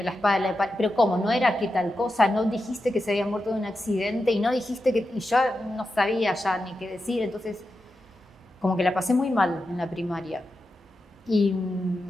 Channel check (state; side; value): normal; both; correlation 0.90